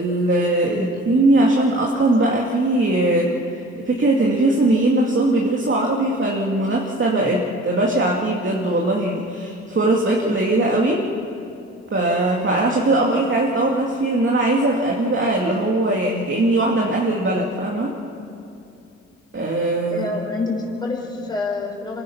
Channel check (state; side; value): normal; both; correlation 0.41